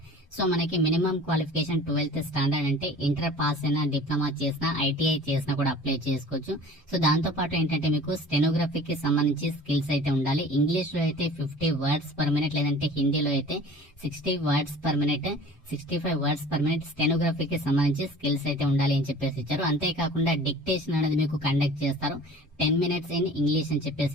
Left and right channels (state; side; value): normal; both; correlation 0.44